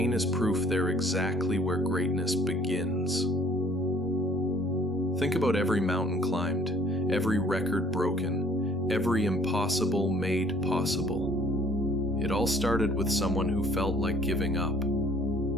is proof they're exactly where greatness begins. Think about every mountain climbed, every record broken, every impossible made possible. It all started with someone who felt like giving up,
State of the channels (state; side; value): normal; both; correlation 0.56